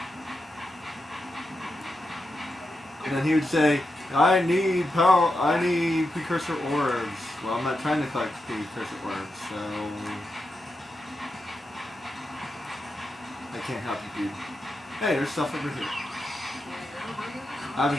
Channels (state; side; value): normal; both; correlation 0.87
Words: And then he would say, I need precursor orbs. Well, I'm not trying to collect precursor orbs, so I can't help you, dude. Hey, there's stuff over here. I